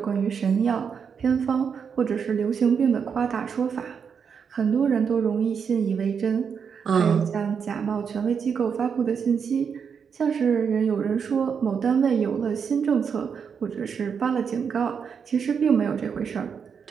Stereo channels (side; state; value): left; quieter; 6.6 dB